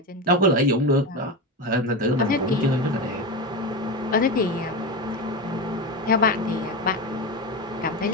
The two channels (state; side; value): normal; both; correlation 0.18